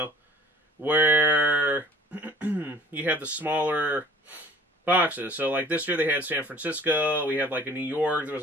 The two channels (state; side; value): normal; both; correlation 0.49